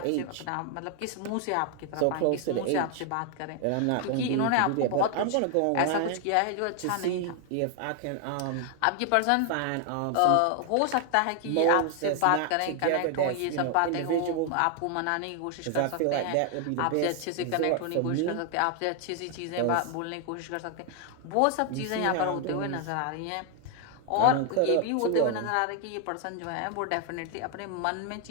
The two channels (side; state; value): both; different; correlation 0.00